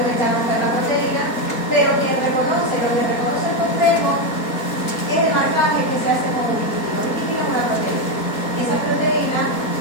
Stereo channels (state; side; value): late; right; 4.2 ms